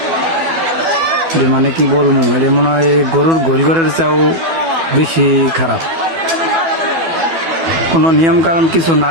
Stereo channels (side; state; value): left; late; 12 ms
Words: যে মানে কি বলবো, এটা মনে হয় গরুর গোলঘরের চাও বেশি খারাপ। কোনো নিয়ম কারণ কিছু